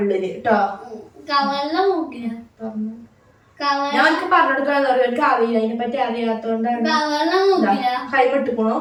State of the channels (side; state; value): both; identical; correlation 1.00